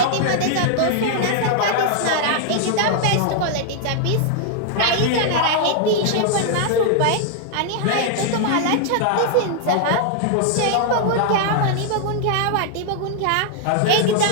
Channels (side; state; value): both; different; correlation 0.00